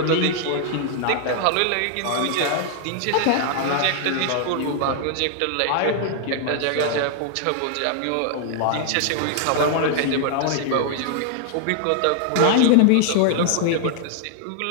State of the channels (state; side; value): different; both; correlation 0.00